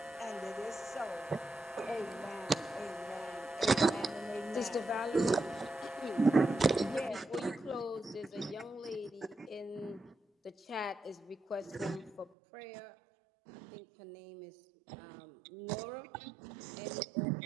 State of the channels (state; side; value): drops out; left; at 12.3 s